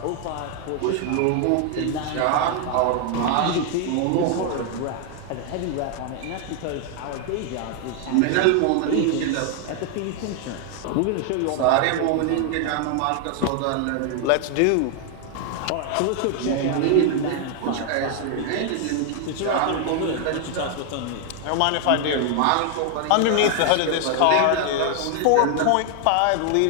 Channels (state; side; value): different; both; correlation 0.00